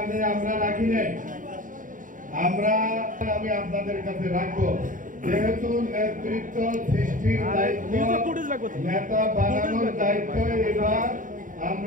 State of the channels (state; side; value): late; left; 0.38 ms